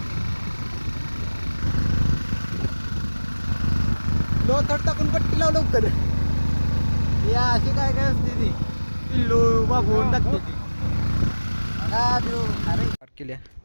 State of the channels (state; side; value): inverted; both; correlation -1.00